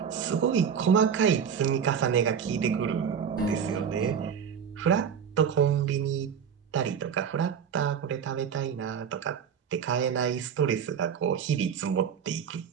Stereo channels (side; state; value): left; quieter; 7.4 dB